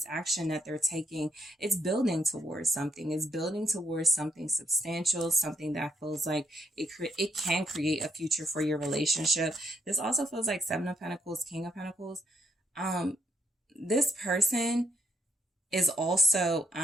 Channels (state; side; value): normal; both; correlation 0.75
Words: action that they're taking, it's building towards something. It's building towards something substantial, something that feels like it can create a future for your relationship. This also feels like Seven of Pentacles, King of Pentacles. This person is also